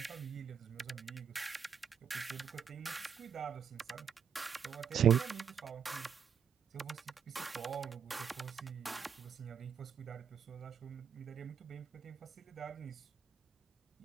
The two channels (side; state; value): left; quieter; 7.4 dB